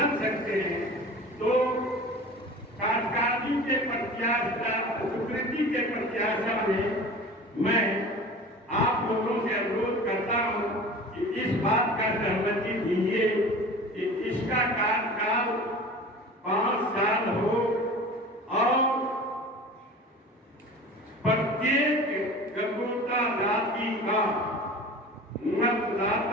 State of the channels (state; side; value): normal; both; correlation 0.38